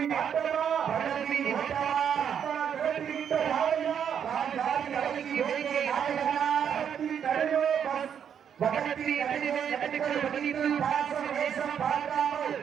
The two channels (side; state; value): left; quieter; 8.2 dB